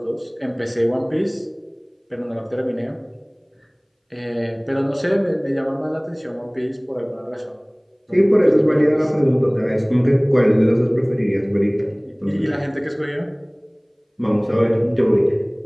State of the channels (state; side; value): identical; both; correlation 1.00